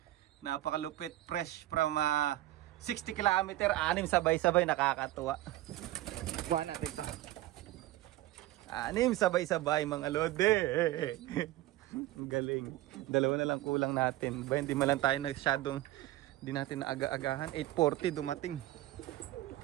Napakalupit, fresh from 60 kilometer, 6 sabay-sabay, nakakatuwa. Kuha natin to. 6 sabay-sabay mga lodi. Ang galing. 2 na lang kulang natin. Ba, hindi man lang tayo nagsyadong, hindi natin naaga-agahan. 8:40 dumating.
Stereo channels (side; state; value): left; quieter; 16.0 dB